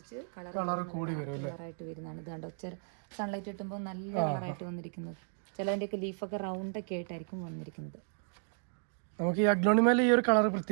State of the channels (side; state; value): left; silent; digital silence